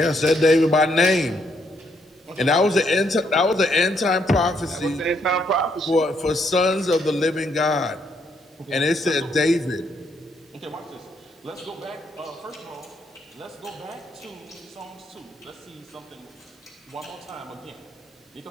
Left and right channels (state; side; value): normal; both; correlation 0.73